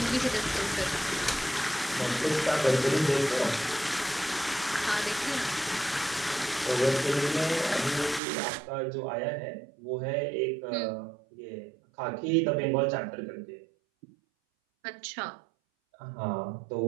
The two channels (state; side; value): drops out; left; at 8.2 s